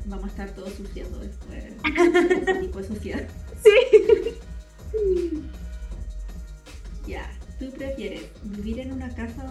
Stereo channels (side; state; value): both; identical; correlation 1.00